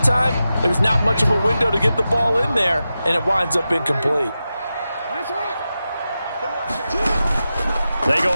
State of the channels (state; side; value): inverted; both; correlation -0.92